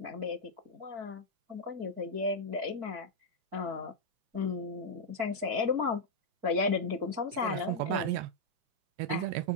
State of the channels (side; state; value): left; late; 4.5 ms